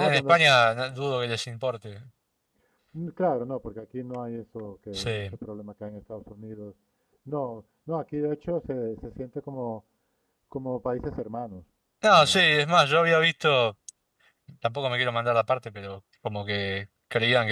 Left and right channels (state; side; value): identical; both; correlation 1.00